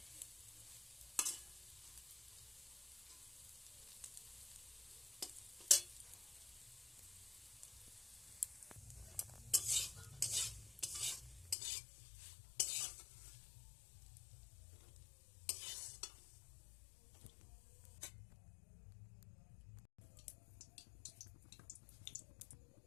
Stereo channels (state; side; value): drops out; right; at 11.6 s